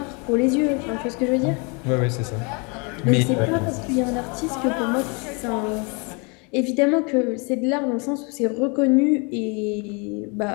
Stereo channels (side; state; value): right; quieter; 32.5 dB